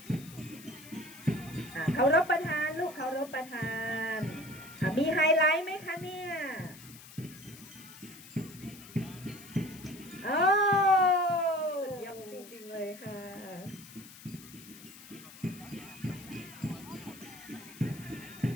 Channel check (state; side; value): noise; left; hiss, 18 dB below the sound